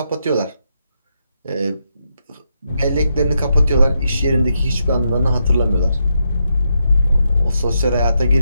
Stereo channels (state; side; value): inverted; both; correlation -0.81